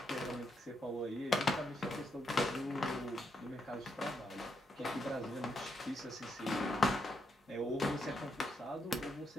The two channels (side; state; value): both; normal; correlation 0.79